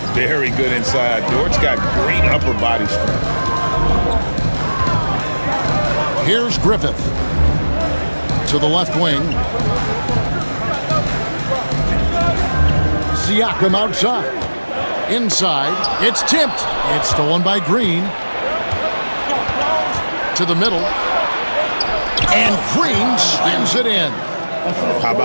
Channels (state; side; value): inverted; both; correlation -1.00